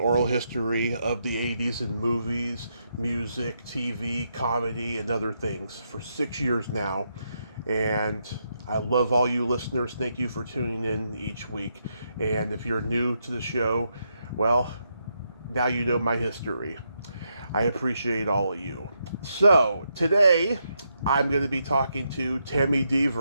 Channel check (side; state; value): both; inverted; correlation -0.81